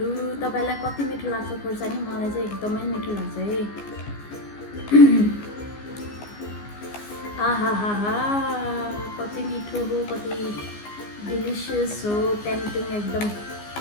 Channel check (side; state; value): right; late; 14 ms